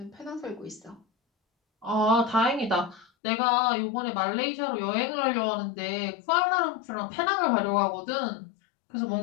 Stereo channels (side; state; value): right; drops out; at 3.1 s